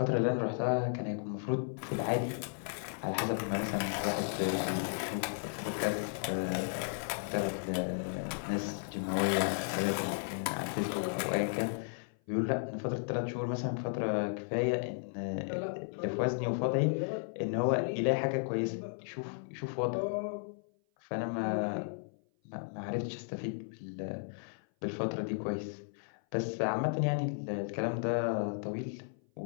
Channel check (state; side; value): silent; right; 55 dB below the other